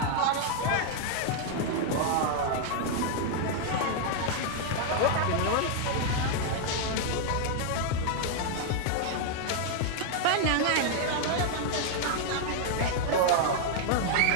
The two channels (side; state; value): both; different; correlation 0.00